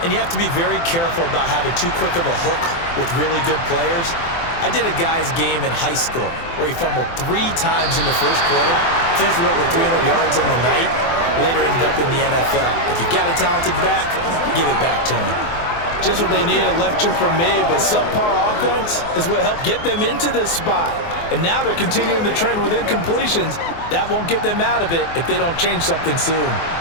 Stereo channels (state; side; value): late; right; 24 ms